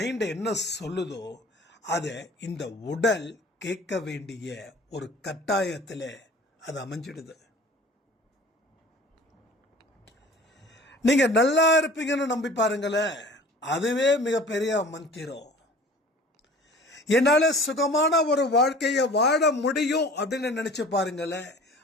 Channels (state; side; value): normal; both; correlation 0.45